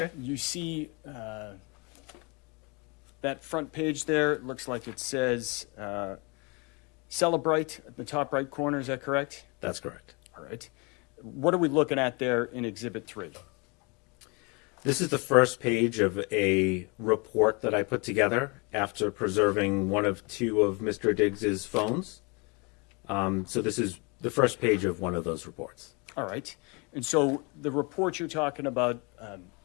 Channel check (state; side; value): quieter; right; 30.2 dB